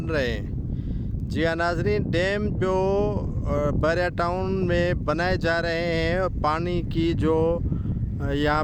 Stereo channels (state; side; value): identical; both; correlation 1.00